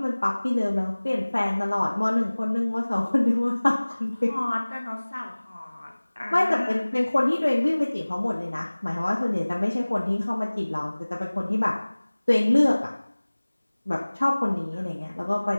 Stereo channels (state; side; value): inverted; both; correlation -1.00